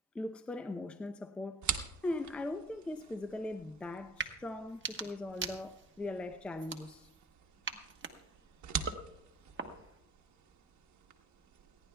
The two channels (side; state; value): both; normal; correlation 0.49